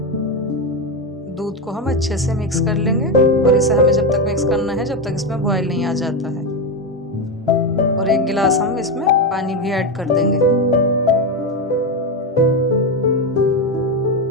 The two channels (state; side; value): normal; both; correlation 0.11